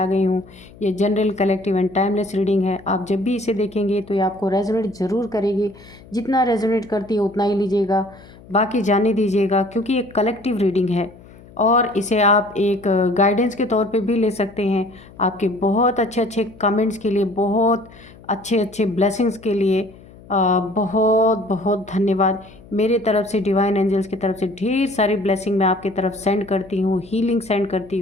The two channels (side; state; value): left; noise; hum, 22 dB below the sound